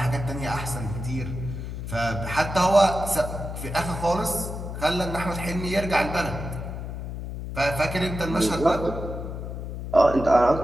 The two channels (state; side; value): noise; left; hum, 7 dB below the sound